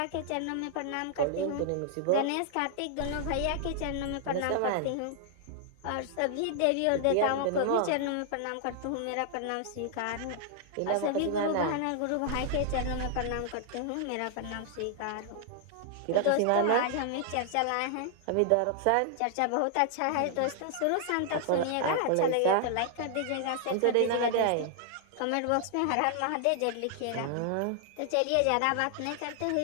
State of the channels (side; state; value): both; different; correlation 0.00